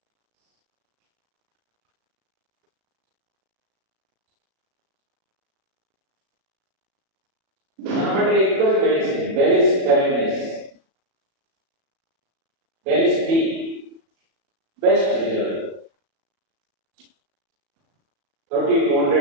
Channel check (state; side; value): late; left; 37 ms